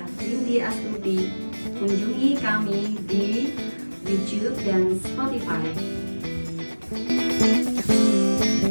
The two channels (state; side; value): inverted; both; correlation -1.00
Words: Cindy Astuti. Kunjungi kami di YouTube dan Spotify.